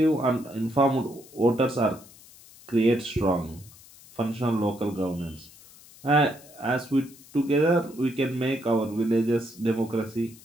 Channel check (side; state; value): left; noise; hiss, 22 dB below the sound